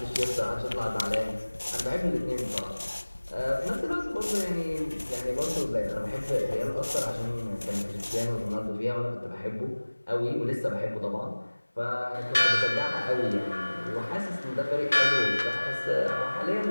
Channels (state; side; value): inverted; both; correlation -1.00